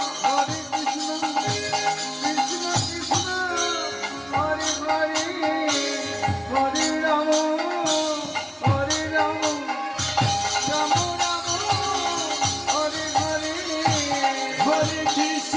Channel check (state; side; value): identical; both; correlation 1.00